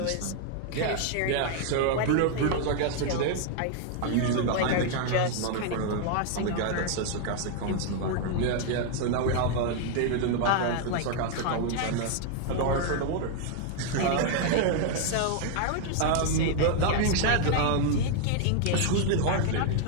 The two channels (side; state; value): both; different; correlation 0.00